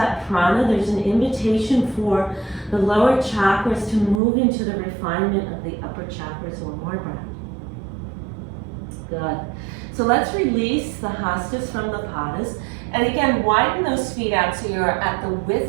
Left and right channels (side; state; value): left; drops out; at 4.2 s